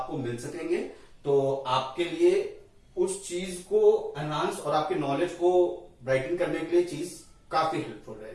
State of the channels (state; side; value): identical; both; correlation 1.00